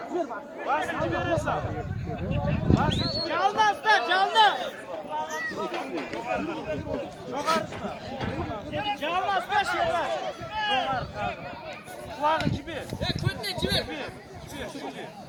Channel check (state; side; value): identical; both; correlation 1.00